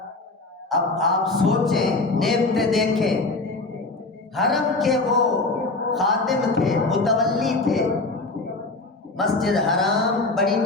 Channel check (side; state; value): right; quieter; 3.3 dB